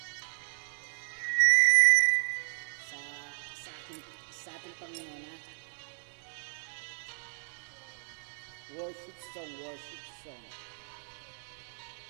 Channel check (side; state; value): left; silent; digital silence